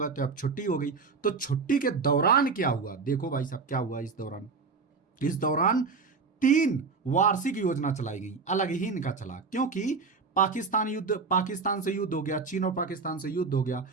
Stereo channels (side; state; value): left; quieter; 4.7 dB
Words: तो अब छुट्टी हो गई। तो छुट्टी के दौरान क्या हुआ? देखो भाई साहब क्या हुआ इस दौरान 3 वार्षिक योजना चलाई गई, अलग ही इनका चला, क्योंकि पाकिस्तान से युद्ध हो गया, चीन और पाकिस्तान से युद्ध हो गया,